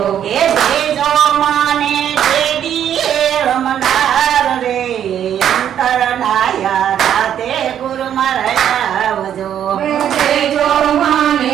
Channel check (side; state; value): left; quieter; 9.8 dB